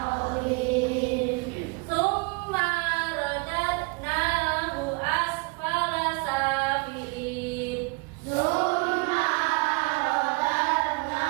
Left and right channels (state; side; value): quieter; left; 30.7 dB